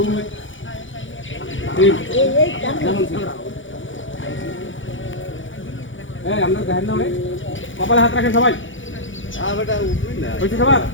3 যেমন ছিল। এই আমরা দেখেন না ভাই কপালে হাত রাখেন সবাই। বেটা উঠবি না হইছে সবার।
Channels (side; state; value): right; late; 0.56 ms